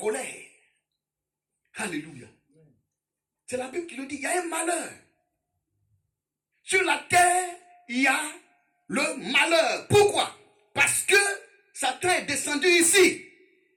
Alléluia. C'est la Bible qui le dit, il y a un malheur. Sur la terre, il y a le malheur. Pourquoi? Parce que Satan est descendu ici.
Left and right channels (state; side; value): identical; both; correlation 1.00